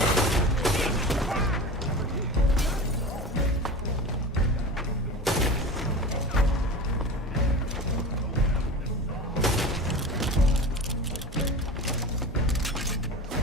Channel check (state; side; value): normal; both; correlation 0.31